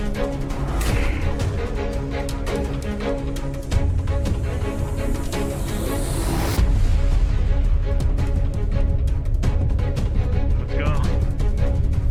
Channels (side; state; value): both; identical; correlation 1.00